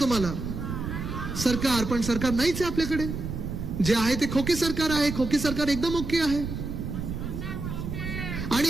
तुम्हाला? सरकार. पण सरकार नाहीच आहे आपल्याकडे. जे आहे ते खोके सरकार आहे. खोके सरकार एकदम ओके आहे.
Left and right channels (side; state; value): right; noise; rumble, 5 dB below the sound